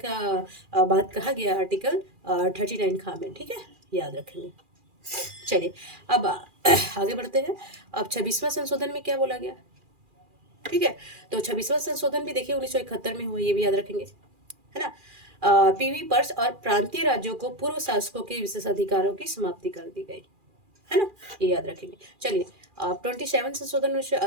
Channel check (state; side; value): late; left; 2.4 ms